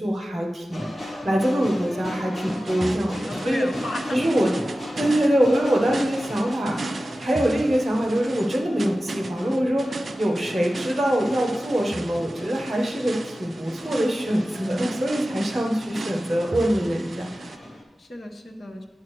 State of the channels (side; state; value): both; normal; correlation 0.95